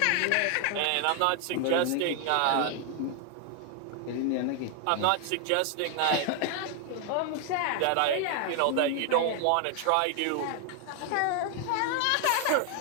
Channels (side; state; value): both; different; correlation 0.00